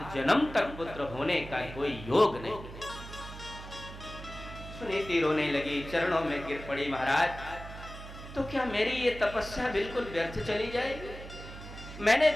जन्म तक पुत्र होने का कोई योग नहीं। सुनीति रोने लगी, चरणों में गिर पड़ी, महाराज तो क्या मेरी ये तपस्या बिल्कुल व्यर्थ चली जाएगी? मैंने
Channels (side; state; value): right; noise; hum, 13 dB below the sound